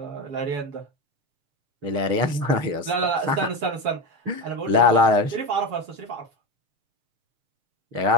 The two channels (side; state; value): left; late; 6.5 ms